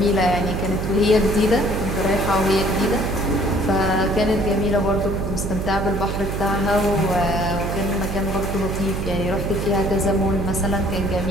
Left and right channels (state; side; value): noise; right; hum, 3 dB below the sound